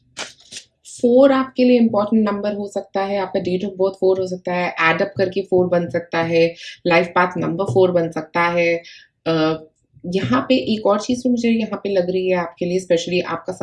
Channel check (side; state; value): both; identical; correlation 1.00